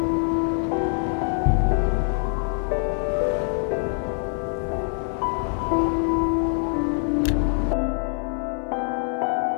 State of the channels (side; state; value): right; silent; 58 dB below the other